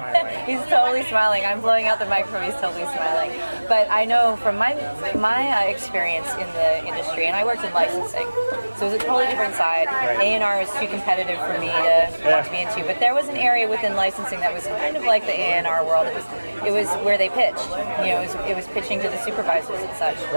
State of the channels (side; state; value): both; inverted; correlation -1.00